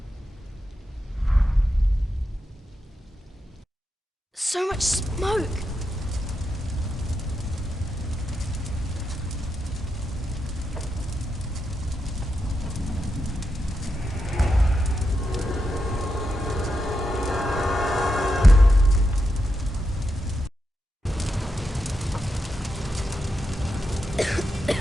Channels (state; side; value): normal; both; correlation 0.86